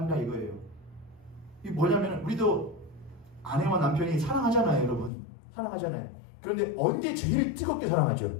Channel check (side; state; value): right; drops out; at 5.1 s